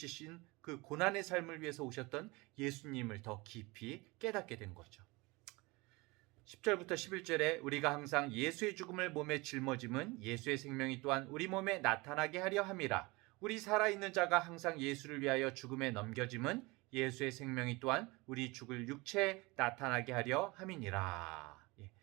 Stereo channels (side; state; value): left; quieter; 24.2 dB